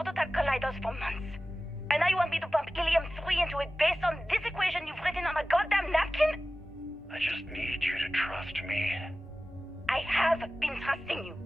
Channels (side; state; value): both; normal; correlation 0.96